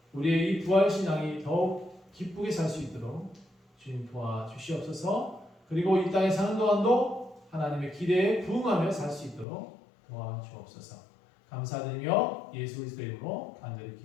우리의 이 부활신앙이 더욱 기쁘게 살 수 있도록 주님 도와주시옵소서. 그리고 이 땅에 사는 동안도 하나님의 기대에 부응하며 살 수 있도록 도와주옵소서. 감사드리며 예수 그리스도의 이름으로 간절히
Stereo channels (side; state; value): right; drops out; at 9.5 s